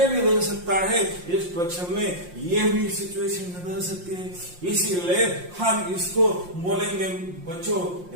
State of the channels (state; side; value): late; left; 5.6 ms